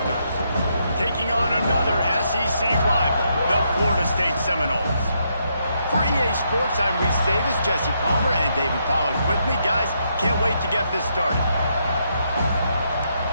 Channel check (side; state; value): both; inverted; correlation -0.77